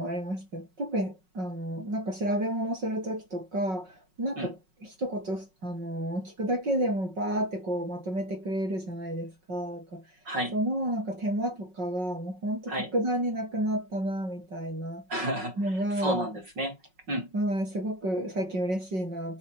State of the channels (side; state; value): left; late; 5.4 ms